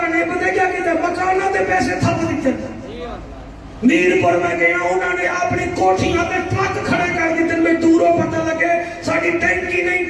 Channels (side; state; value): both; identical; correlation 1.00